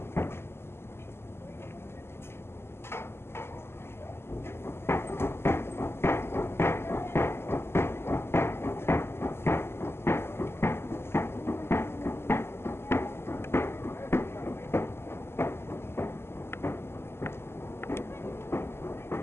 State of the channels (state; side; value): late; right; 0.12 ms